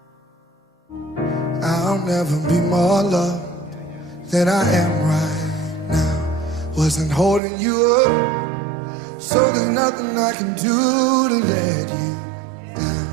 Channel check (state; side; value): drops out; left; at 7.4 s